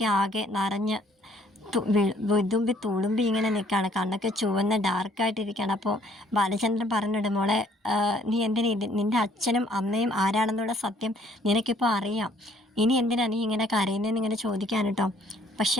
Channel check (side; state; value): both; normal; correlation 0.62